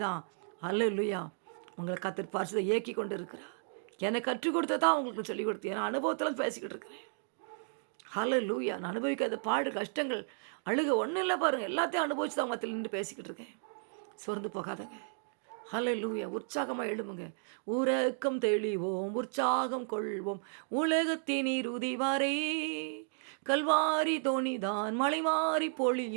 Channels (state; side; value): silent; left; digital silence